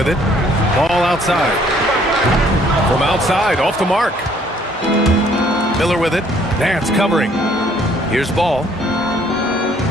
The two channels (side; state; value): both; normal; correlation 0.62